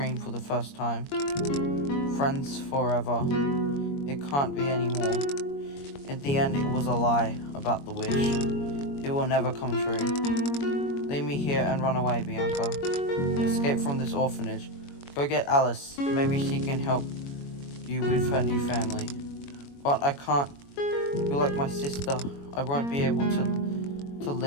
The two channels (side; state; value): right; late; 21 ms